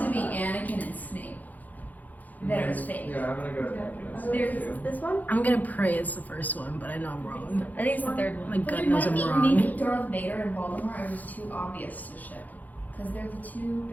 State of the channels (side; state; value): right; late; 0.081 ms